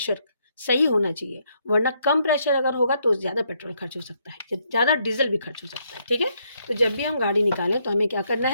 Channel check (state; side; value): inverted; both; correlation -0.73